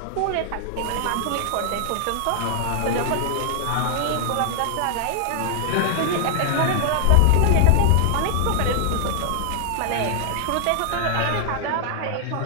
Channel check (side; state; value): both; different; correlation 0.00